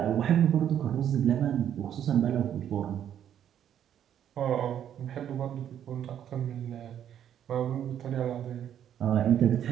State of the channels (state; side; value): quieter; left; 9.9 dB